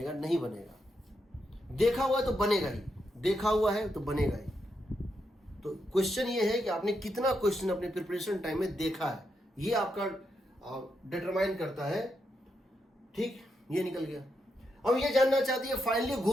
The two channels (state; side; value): normal; both; correlation 0.83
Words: नहीं बनेगा। देखा हुआ है तो बनेगा ही, देखा हुआ है तो बनेगा ही। तो क्वेश्चन ये है कि आपने कितना क्वेश्चन अपने प्रिपरेशन टाइम में देखा है, ये आपका डिटरमाइन करता है, ठीक। ये निकल गया। अब ये जानना चाहती है फाइनली